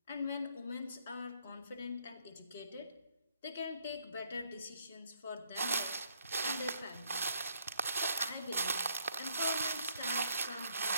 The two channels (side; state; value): both; inverted; correlation -0.69